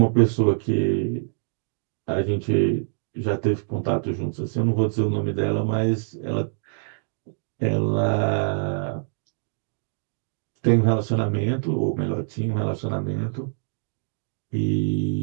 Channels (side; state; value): left; silent; digital silence